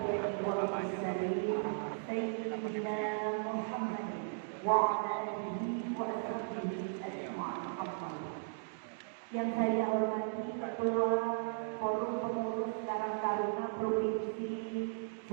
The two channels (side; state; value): left; silent; digital silence